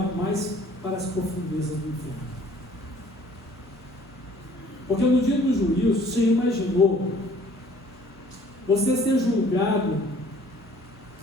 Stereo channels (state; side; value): normal; both; correlation 0.55